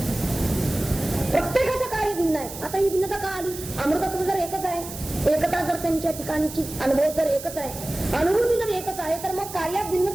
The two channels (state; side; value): noise; right; hiss, 12 dB below the sound